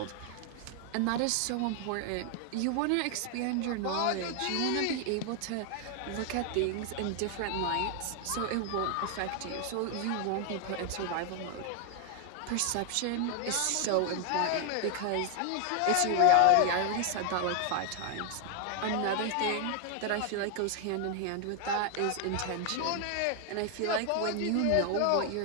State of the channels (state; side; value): different; both; correlation 0.00